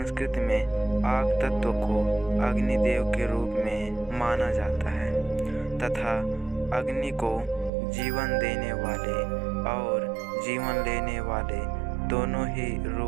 में आग तत्व को अग्निदेव के रूप में माना जाता है तथा अग्नि को जीवन देने वाले और जीवन लेने वाले दोनों ही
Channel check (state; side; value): drops out; left; at 7.7 s